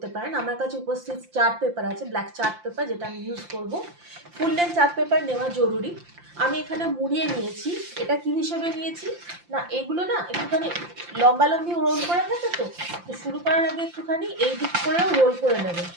পারেন। আমার কাছে উপস্থিত চার্ট পেপার আছে, ব্ল্যাক চার্ট পেপার, যেটা আমি ইউজ করব। ফুল লেন্থ চার্ট পেপার নেওয়া জরুরি। আমি এখানে মুড়িয়ে নিয়েছি। এটা কি হিসেবে নিয়েছি না, এগুলো না একটুখানি লম্বালম্বি রোল করে থাকে। তো শুরু করার আগে একটুখানি এই দিক করেও রোল করে নেবেন।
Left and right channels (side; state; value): left; late; 5.8 ms